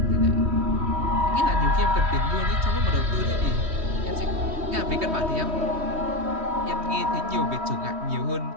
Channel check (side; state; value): left; late; 3.1 ms